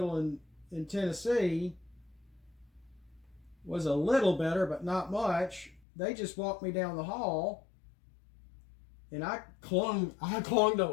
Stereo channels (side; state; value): right; drops out; at 5.8 s